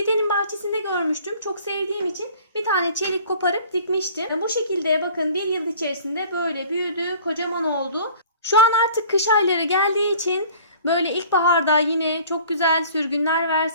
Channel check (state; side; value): inverted; both; correlation -0.49